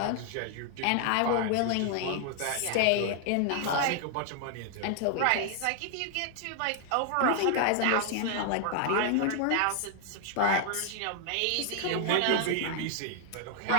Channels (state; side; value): different; both; correlation 0.00